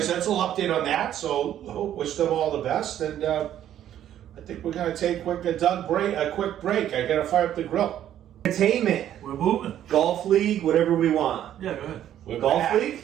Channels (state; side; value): quieter; left; 11.2 dB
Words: that's a little update on that. So, wish them all the best. And I think we're going to take a quick break. I got to fire up the grill. Entertainment. We're moving. Golf league, whatever we want. Yeah, go ahead. We're Golf back.